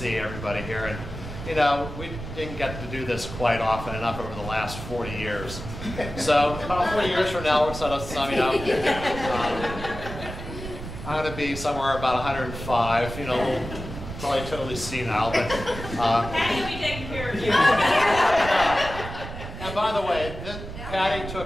everybody here. And you know, we didn't get to do this quite often enough over the last 40 years. So about 40 years from now, we're sort of summing up. I'm going to be somewhere about 105, you know, probably totally senile, but... Patty will be taking care of you. And by the way, Patty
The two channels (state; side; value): noise; right; rumble, 9 dB below the sound